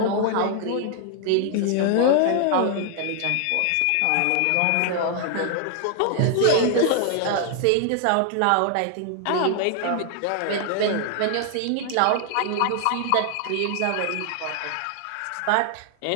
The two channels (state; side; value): different; both; correlation 0.00